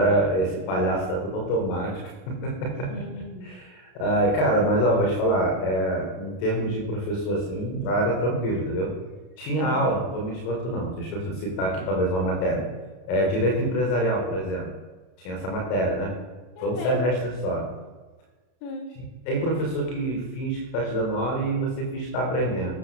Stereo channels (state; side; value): late; right; 32 ms